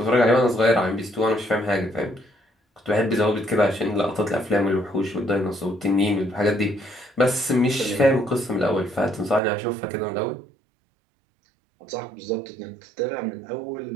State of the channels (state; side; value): drops out; left; at 9.4 s